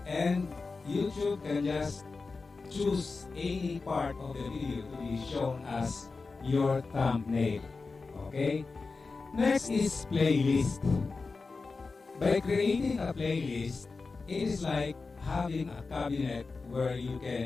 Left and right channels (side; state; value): right; quieter; 4.1 dB